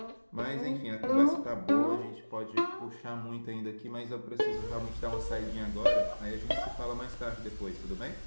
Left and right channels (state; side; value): inverted; both; correlation -1.00